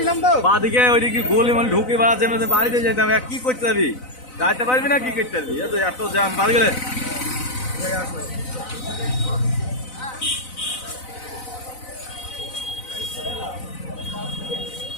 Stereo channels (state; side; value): late; right; 4.0 ms